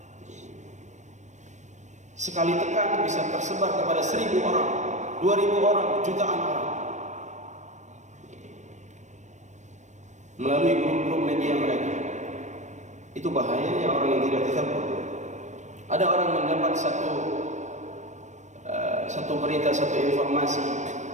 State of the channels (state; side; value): late; left; 0.34 ms